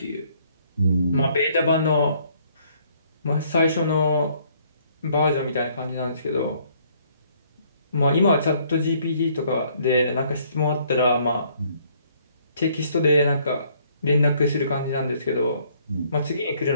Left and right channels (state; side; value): inverted; both; correlation -0.64